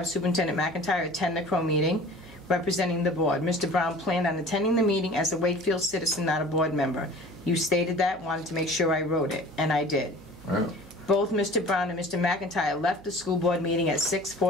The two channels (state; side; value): noise; right; hum, 21 dB below the sound